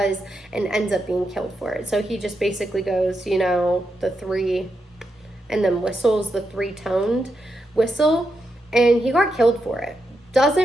and ends up being killed for it. So he just basically goes, you know, the 3 and then whistles the 3-toned whistle, and he got killed for it.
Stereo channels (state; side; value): normal; both; correlation 0.85